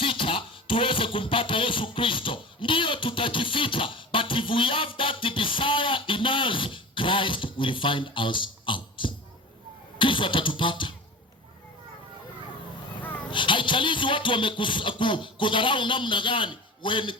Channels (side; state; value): both; normal; correlation 0.33